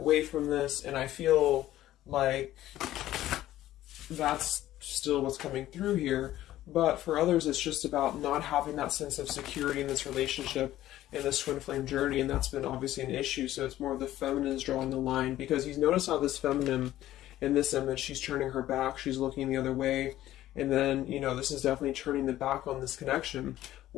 from this. And I feel like that's still what's coming through here. But for others, it's just about not having that sense of security in this relationship, in this Twin Flame journey, and that's been obviously an issue. So it's more of the feminine is drawing the line, because you notice how this feminine in this image, she's turning her back, she's looking the other way, and then, this is definitely turning the back on this connection,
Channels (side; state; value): right; quieter; 14.0 dB